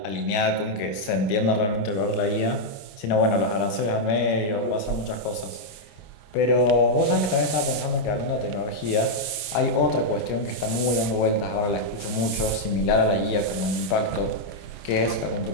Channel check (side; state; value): right; late; 28 ms